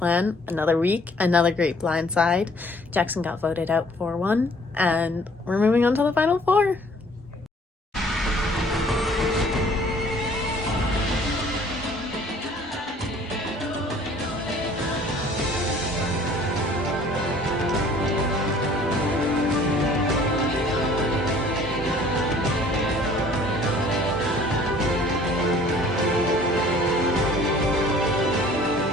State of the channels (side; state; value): both; normal; correlation 0.55